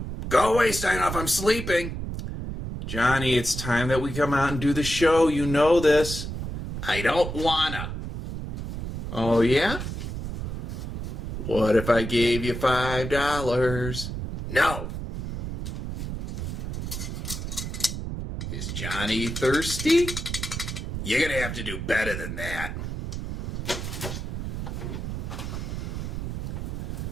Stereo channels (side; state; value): right; noise; rumble, 5 dB below the sound